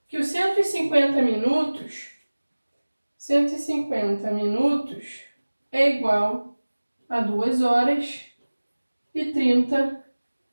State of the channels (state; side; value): inverted; both; correlation -1.00